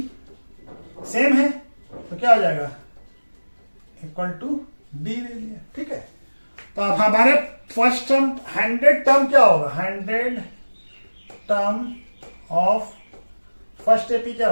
same है तो क्या हो जाएगा इक्वल टू डी ले लिया, ठीक है। तो अब हमारे फर्स्ट टर्म 100 टर्म क्या होगा 100 टर्म ऑफ फर्स्ट एपी क्या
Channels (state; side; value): inverted; both; correlation -1.00